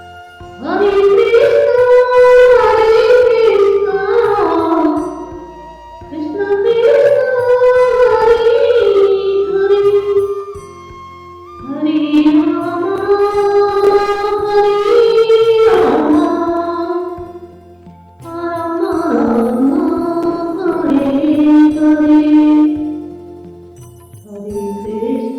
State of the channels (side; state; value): both; identical; correlation 1.00